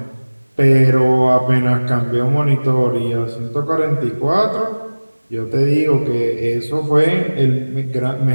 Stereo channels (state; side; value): inverted; both; correlation -1.00